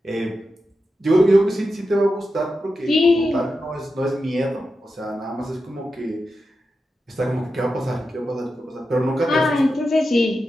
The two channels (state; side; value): normal; both; correlation 0.90